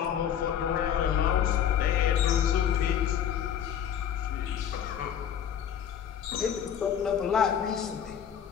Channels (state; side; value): quieter; right; 9.1 dB